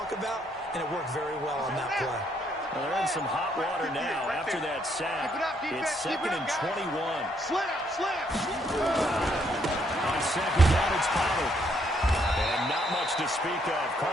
about, and it worked very well on that play. Well, they're in some hot water now after that sack. It's 2nd and 21. Slam. On 2nd down, it's Pollard. And not much to speak of.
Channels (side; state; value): both; normal; correlation 0.71